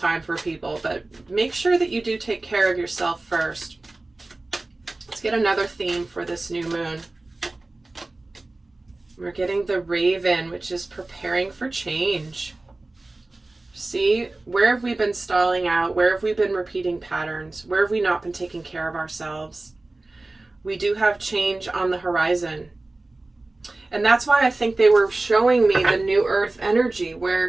for people, but make sure that you do take care of yourself first. Let's get another theme for this new moon. We're getting the Raven, which is preparing for change. See, where have we been stalling out? Where have we been repeating patterns? Where have we not been taking care of ourselves? We do have change on the horizon. And that's why I think they were showing me the New Earth energy,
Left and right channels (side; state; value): left; quieter; 3.0 dB